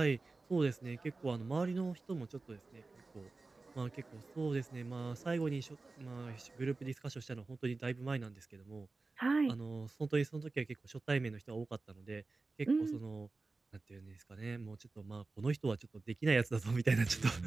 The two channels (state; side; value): quieter; left; 3.6 dB